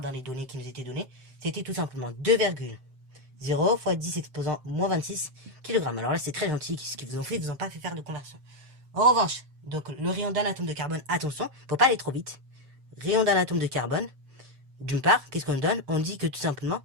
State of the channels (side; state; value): left; late; 7.7 ms